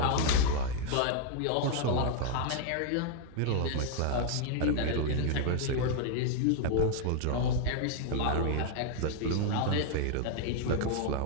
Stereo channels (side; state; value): both; different; correlation 0.00